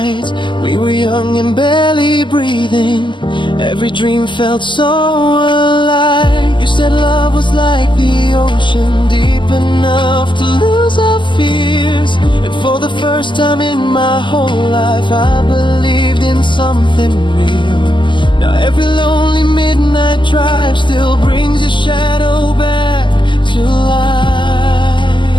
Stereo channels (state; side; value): late; right; 0.24 ms